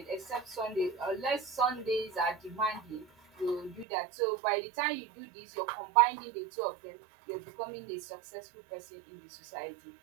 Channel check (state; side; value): drops out; left; at 3.9 s